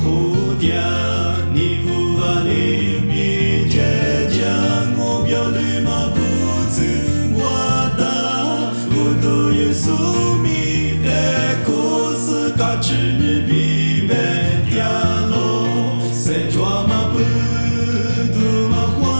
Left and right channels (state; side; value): inverted; both; correlation -1.00